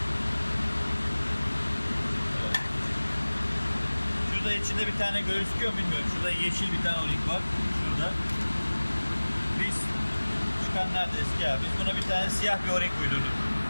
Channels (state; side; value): inverted; both; correlation -1.00